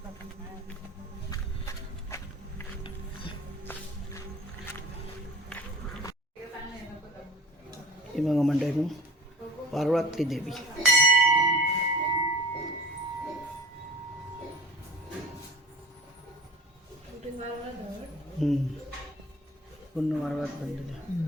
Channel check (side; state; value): both; normal; correlation 0.41